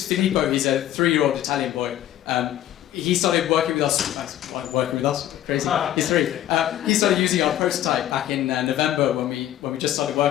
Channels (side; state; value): right; quieter; 12.4 dB